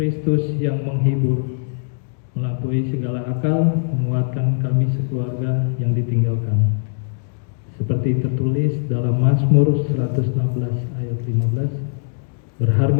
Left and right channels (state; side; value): silent; right; digital silence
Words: yang menghibur, melampaui segala akal, menguatkan kami sekeluarga yang ditinggalkan. Seperti tertulis dalam Mazmur 116 ayat 15,